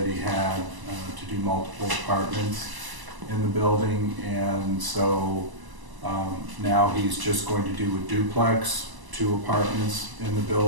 he had to do multiple apartments in the building, and so now he's just going to do a duplex, 2 apartments in the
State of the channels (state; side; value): late; left; 1.0 ms